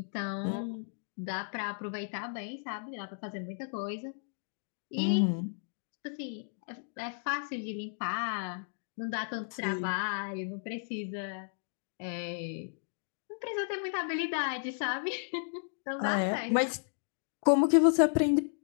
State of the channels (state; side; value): silent; right; digital silence